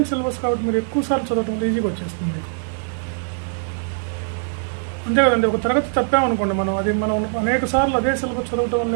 సిలబస్ కాబట్టి మీరు ఎక్కువ సార్లు చదవటం ఈజీగా వచ్చేస్తుంది మీకు. అంతే కదండి, ఒక తరగతి తప్పామనుకోండి, మనం అనేక సార్లు అదే సిలబస్ చదవటం వల్ల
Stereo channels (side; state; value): left; silent; digital silence